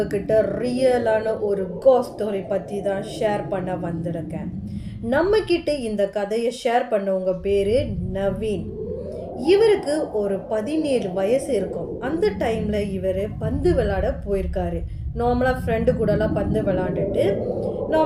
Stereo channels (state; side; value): identical; both; correlation 1.00